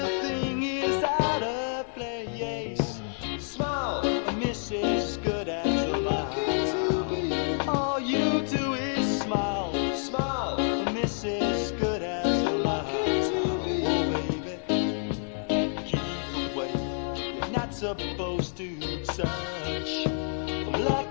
is out of place. Smile, Mrs. Good as a mile. All you do is smile. Smile, Mrs. Good as a mile. Oh baby, keep away. You're not supposed to touch. I'm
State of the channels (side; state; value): right; silent; 59 dB below the other